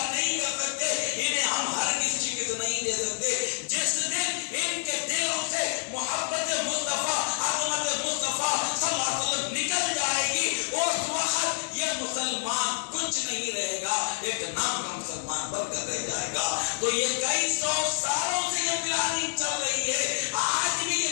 نہیں کر سکتے, انہیں ہم ہرگز شکست نہیں دے سکتے. جس دن ان کے دلوں سے محبت مصطفیٰ عظمت مصطفیٰ صلی اللہ علیہ وسلم نکل جائے گی اس وقت یہ مسلمان کچھ نہیں رہے گا, ایک نام کا مسلمان بن کر رہ جائے گا. تو یہ کئی سو سالوں سے یہ پلاننگ چل رہی ہے, آج بھی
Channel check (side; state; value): right; silent; digital silence